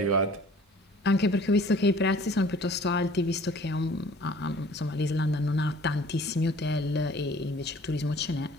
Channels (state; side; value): normal; both; correlation 0.50